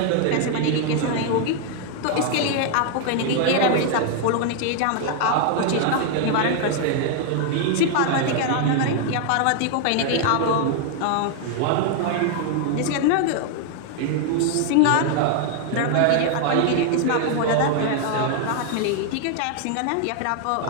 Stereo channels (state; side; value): different; both; correlation 0.00